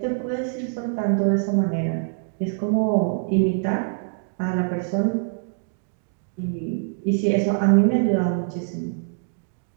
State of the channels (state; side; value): silent; left; digital silence